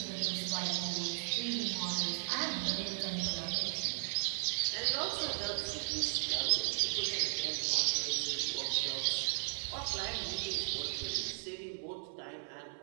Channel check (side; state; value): left; silent; 54 dB below the other